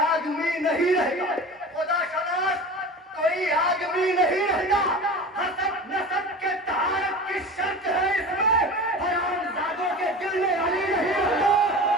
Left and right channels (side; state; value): both; normal; correlation 0.34